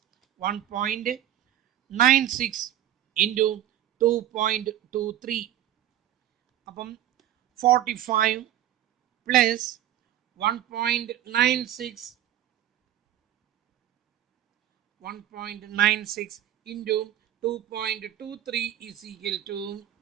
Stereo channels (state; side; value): quieter; left; 12.0 dB